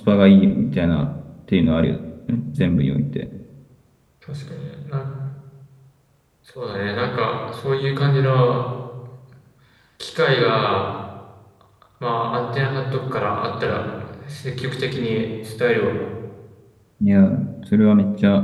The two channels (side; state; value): both; identical; correlation 1.00